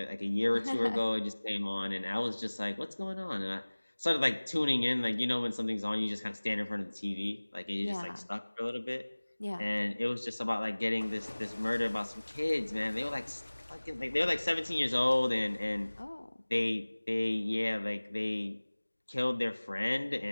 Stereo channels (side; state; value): both; inverted; correlation -1.00